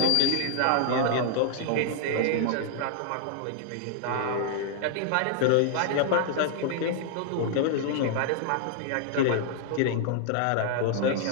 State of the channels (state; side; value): different; both; correlation -0.01